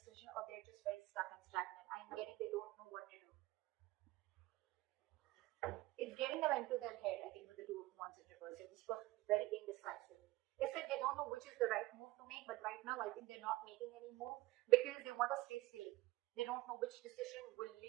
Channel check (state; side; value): quieter; left; 18.8 dB